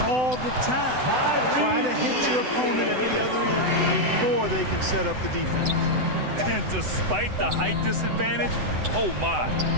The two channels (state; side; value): late; left; 7.9 ms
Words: all the time. Try to hit your opponent at the other end before they can set up the defense. And despite the height disadvantage, oh my,